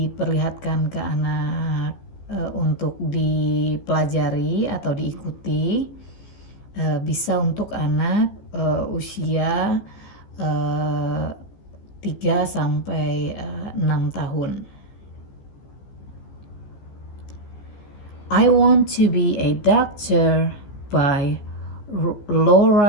ke anak untuk dipelajari atau diikuti, bisa untuk anak usia 3 sampai 6 tahun. I Want to Be a Doctor by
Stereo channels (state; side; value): late; right; 14 ms